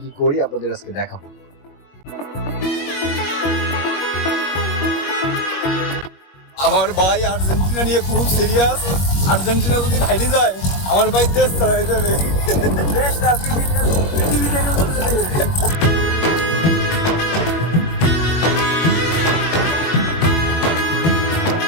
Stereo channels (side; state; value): right; late; 21 ms